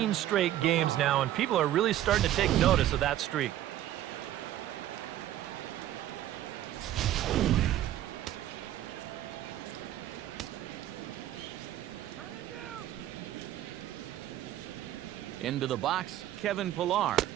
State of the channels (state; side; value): quieter; left; 12.9 dB